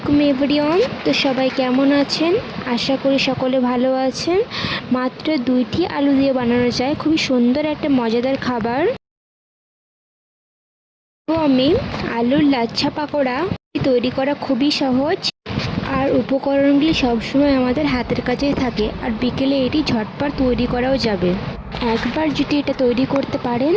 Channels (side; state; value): both; identical; correlation 1.00